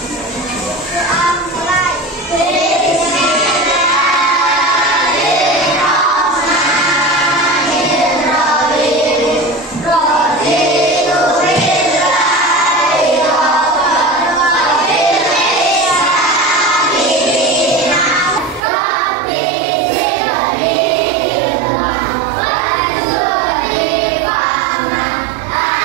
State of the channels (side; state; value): left; drops out; at 18.6 s